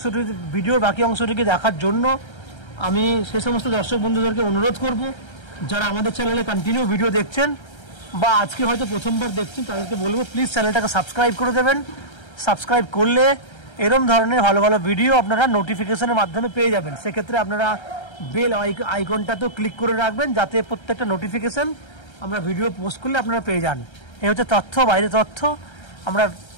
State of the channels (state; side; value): late; right; 1.3 ms